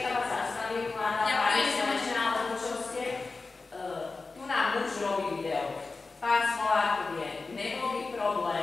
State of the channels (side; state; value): right; quieter; 3.9 dB